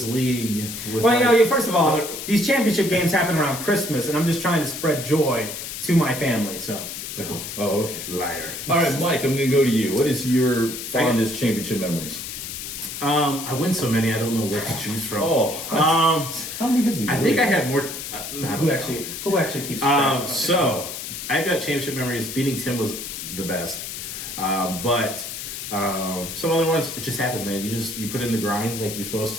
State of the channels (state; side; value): noise; left; hiss, 7 dB below the sound